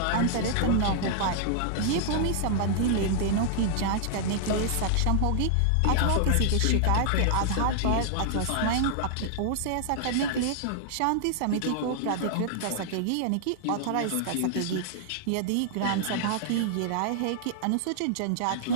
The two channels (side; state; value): both; different; correlation -0.01